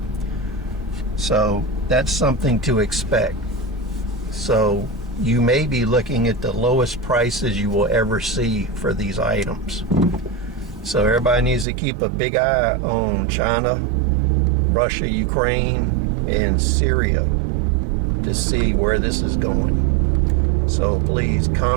So that's something to expect. So you may be looking at the lowest prices you will ever see for these items. So everybody needs to keep a big eye on China, Russia, Ukraine, and Syria to see where this is going. So please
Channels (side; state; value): left; drops out; at 11.7 s